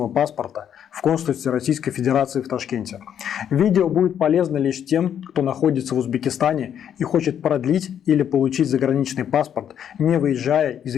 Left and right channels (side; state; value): right; quieter; 9.2 dB